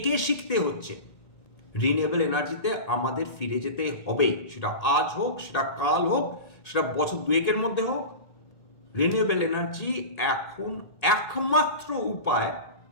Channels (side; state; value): right; late; 1.8 ms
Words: শিখতে হচ্ছে। রিনিউয়েবল এনার্জিতে আমাদের ফিরে যেতে হবে, সেটা আজ হোক, সেটা কাল হোক, সেটা বছর দুয়েকের মধ্যে হোক। রিনিউয়েবল এনার্জি এখন একমাত্র উপায়